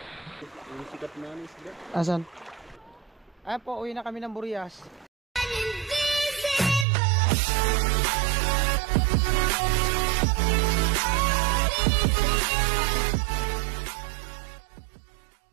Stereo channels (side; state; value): left; drops out; at 6.9 s